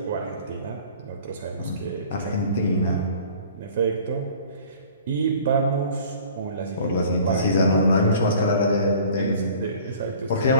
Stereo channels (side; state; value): both; inverted; correlation -0.48